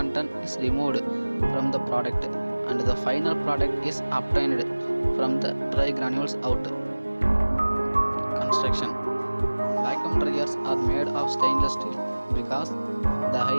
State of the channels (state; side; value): inverted; both; correlation -1.00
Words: is removed from the product and the final product is obtained from the dry granules out. Construction. Vacuum dryers are made of stainless steel because the